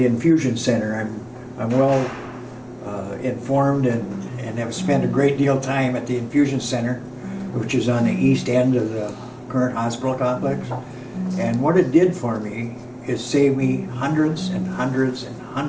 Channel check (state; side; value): identical; both; correlation 1.00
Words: infusion center. I'm well informed and have spent a great deal of time at the infusion center, which is on the east end of the current hospital complex. And what it did for me is save me hundreds and hundreds and